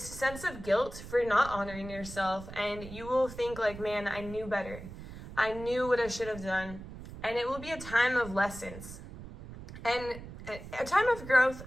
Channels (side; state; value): right; noise; rumble, 13 dB below the sound